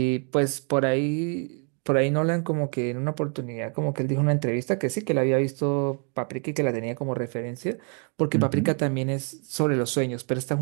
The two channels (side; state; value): left; quieter; 39.6 dB